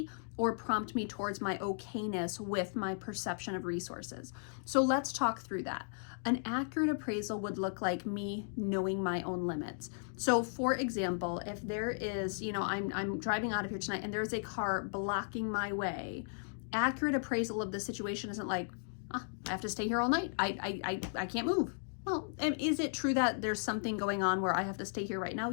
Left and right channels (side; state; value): right; silent; digital silence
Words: or prompt me towards my okayness with my perception of resources. So let's talk through that. An accurate appraisal would look like me knowing my own limits. So for example, if there is, I'm driving out of here tonight and there's a car blocking my way, accurate appraisal of the situation isn't like, I have to stay here all night. I can't move. Well, and is it true that there's something going on where I have to stay here right now?